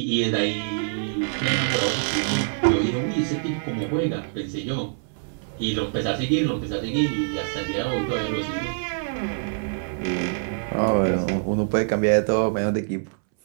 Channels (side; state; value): left; silent; 62 dB below the other